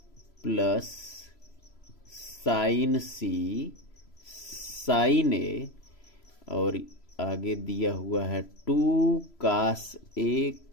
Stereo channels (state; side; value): late; right; 3.0 ms